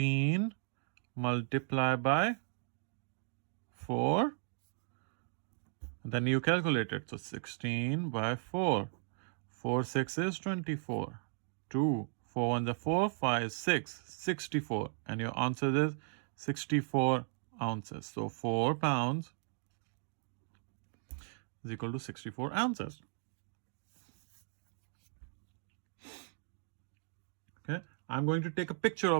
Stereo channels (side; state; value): left; silent; 54 dB below the other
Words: multiplied by 4. Then you calculate it. So 16 by 4. 4 6 is 24. 2 4 1 is 4, 5 6, 64. And your answer is 64 ounces. So 4 pounds is equal to 64 ounces. Okay, I'm going to take a picture